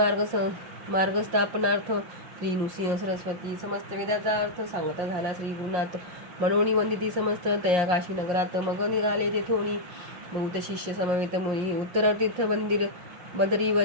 मार्गस्थापनार्थ श्री नृसिंह सरस्वती समस्त वेदाचा अर्थ सांगता झाला श्री गुरुनाथ म्हणून वंदिती समस्त तया काशी नगरात मग निघाले तेथोणी बहुत शिष्य समवेत मुनी उत्तर तीर्थ मंदिर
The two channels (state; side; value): late; left; 5.6 ms